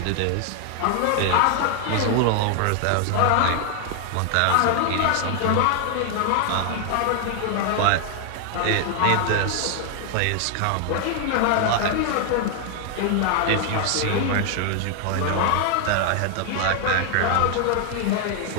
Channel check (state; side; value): different; both; correlation 0.00